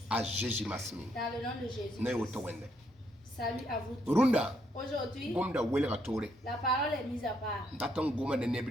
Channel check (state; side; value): normal; both; correlation 0.74